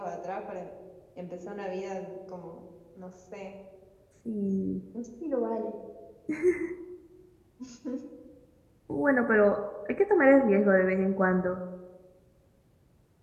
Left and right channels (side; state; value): both; identical; correlation 1.00